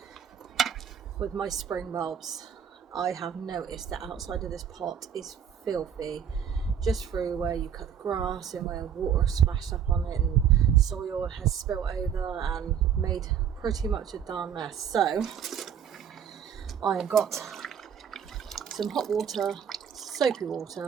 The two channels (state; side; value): quieter; left; 8.3 dB